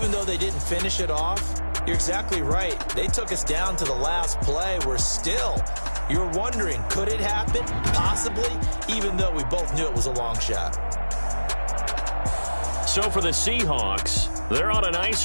though they didn't finish it off, you're exactly right. They took us down to the last play. You're wondering, could it happen? Possibly, even though we both knew it was a long shot. So for the Seahawks, they're on a nice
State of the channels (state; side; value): inverted; both; correlation -1.00